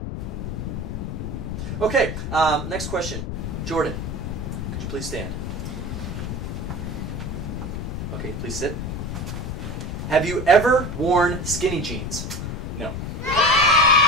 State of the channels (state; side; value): noise; left; rumble, 4 dB below the sound